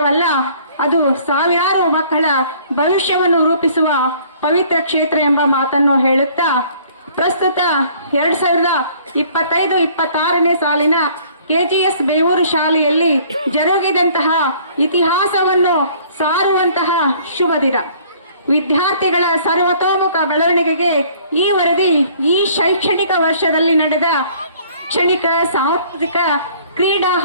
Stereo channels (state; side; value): inverted; both; correlation -0.56